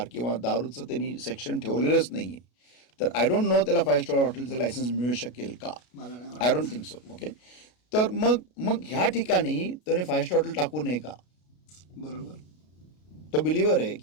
किंवा दारूचं त्यांनी सेक्शन ठेवलेलंच नाही आहे, तर आय डोंट नो त्याला 5 स्टार हॉटेलचं लायसन्स मिळू शकेल का? मला नाही आय वाटत. Don't think so. ओके, तर मग ह्या ठिकाणी त्याने 5 स्टार हॉटेल टाकू नये का? बरोबर. तो बिलिव्हर आहे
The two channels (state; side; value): late; right; 33 ms